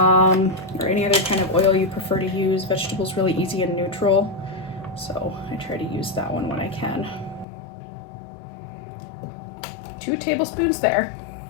any other kind of oil you prefer to use. Vegetable's really easy and neutral, so I try to use that one when I can. 2 tablespoons there.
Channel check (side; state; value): right; drops out; at 7.5 s